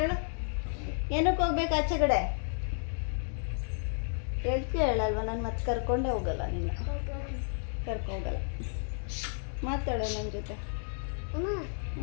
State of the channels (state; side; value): silent; right; digital silence